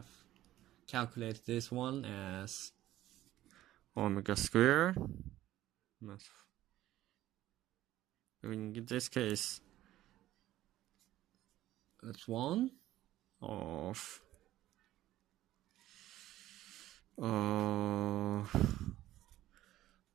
calculated this one as omega square. In this case, it's 1 of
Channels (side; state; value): left; quieter; 14.5 dB